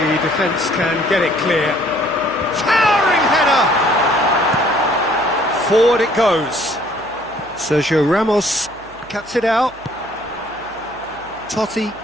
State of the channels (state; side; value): noise; right; hum, 24 dB below the sound